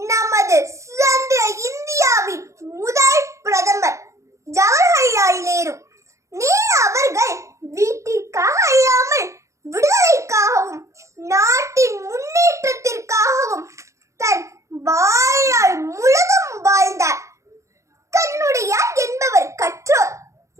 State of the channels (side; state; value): left; late; 0.15 ms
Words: சுதந்திர இந்தியாவின் முதல் பிரதமர் ஜவஹர்லால் நேரு. நேரு அவர்கள் வீட்டிற்காக அல்லாமல் விடுதலைக்காகவும் நாட்டின் முன்னேற்றத்திற்காகவும் தன் வாழ்நாள் முழுதும் வாழ்ந்தார். கண்ணுடையார் என்பவர் கற்றோர்,